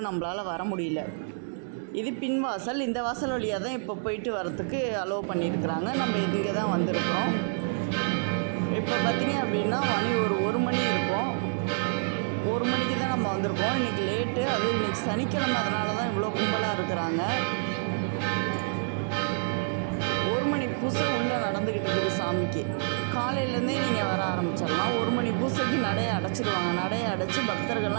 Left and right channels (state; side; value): silent; left; 59 dB below the other